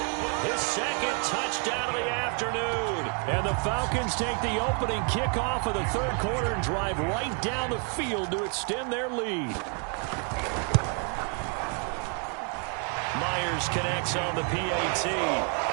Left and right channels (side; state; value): left; quieter; 39.8 dB